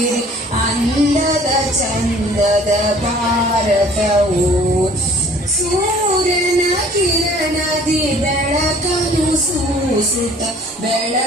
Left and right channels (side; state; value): both; normal; correlation 0.52